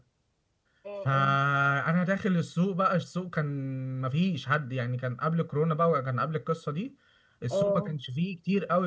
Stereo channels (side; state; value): both; identical; correlation 1.00